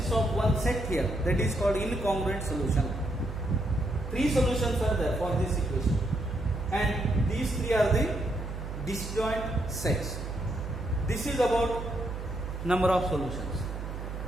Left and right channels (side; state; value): right; noise; hum, 7 dB below the sound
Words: of one set here. That is called incongruent solution. 3 solutions are there for this equation. And these 3 are the disjoint sets. This is about number of solutions.